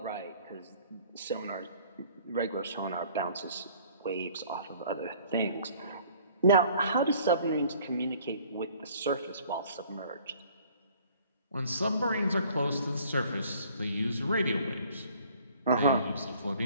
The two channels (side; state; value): both; inverted; correlation -0.55